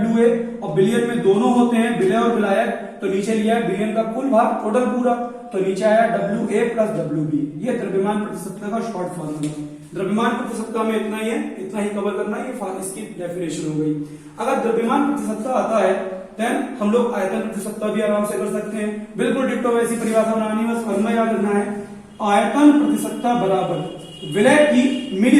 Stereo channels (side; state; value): both; identical; correlation 1.00